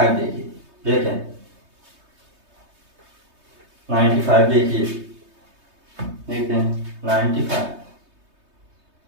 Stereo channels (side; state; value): left; late; 3.2 ms